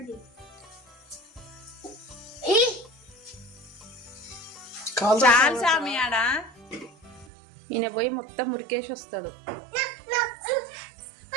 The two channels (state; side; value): drops out; left; at 7.2 s